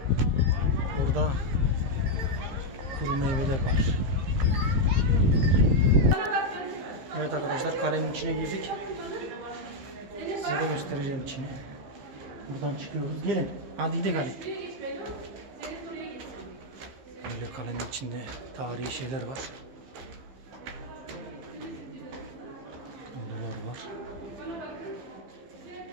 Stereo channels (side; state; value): left; late; 15 ms